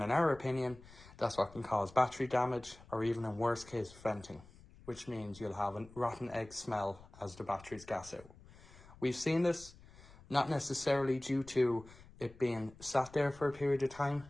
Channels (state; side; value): noise; left; rumble, 21 dB below the sound